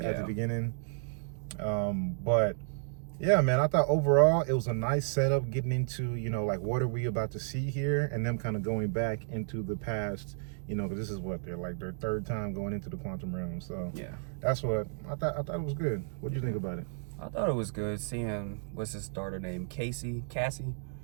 the beginning. But yeah, man, I thought overall it was a nice setup getting into, like what are we about to see here, and them kind of going back into the past, because this is what they're like their third time going into the quantum realm. So yeah, that's what I thought. I thought it was good. What do you think about it? I thought it was good seeing what's his daughter name, Cassie,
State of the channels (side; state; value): left; silent; digital silence